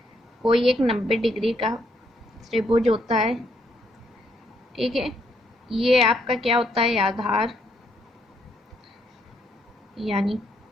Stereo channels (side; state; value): both; normal; correlation 0.73